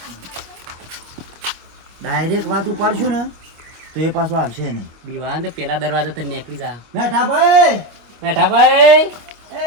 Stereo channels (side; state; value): left; late; 25 ms